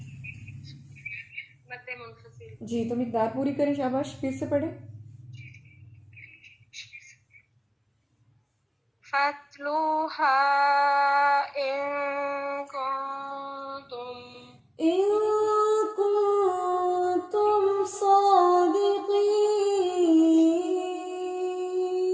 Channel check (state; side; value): identical; both; correlation 1.00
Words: مد منفصل. جی تو مقدار پوری کریں. شاباش. پھر سے پڑھیں. فَاتْلُوهَا إِن كنتم صادقين.